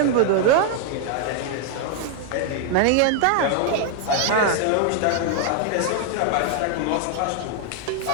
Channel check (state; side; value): different; both; correlation 0.00